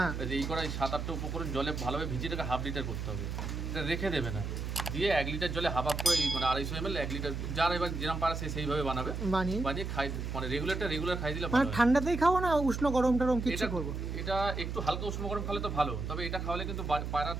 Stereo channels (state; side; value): noise; right; hum, 4 dB below the sound